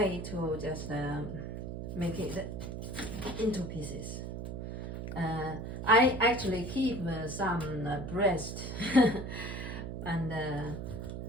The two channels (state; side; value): noise; right; hum, 6 dB below the sound